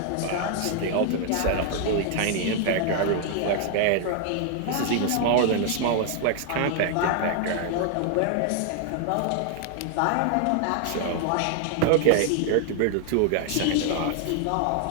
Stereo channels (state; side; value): different; both; correlation 0.00